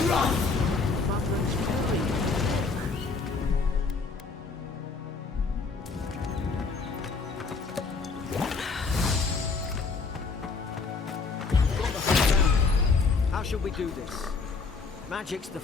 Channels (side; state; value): right; quieter; 4.4 dB